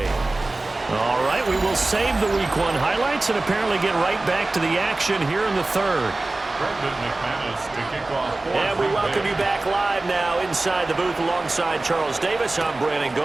All right, we will save the Week 1 highlights and apparently get right back to the action here in the third. And we welcome you back live now inside the booth alongside Charles Davis. I'm Brandon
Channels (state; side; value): quieter; left; 3.0 dB